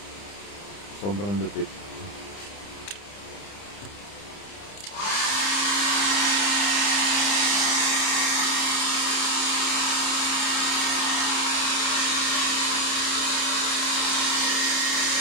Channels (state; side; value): late; right; 30 ms